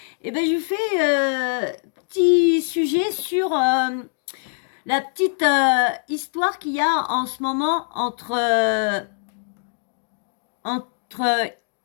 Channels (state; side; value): silent; right; digital silence